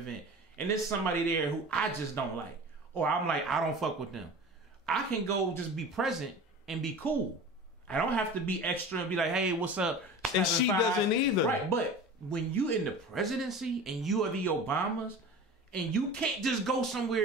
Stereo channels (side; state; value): both; normal; correlation 0.36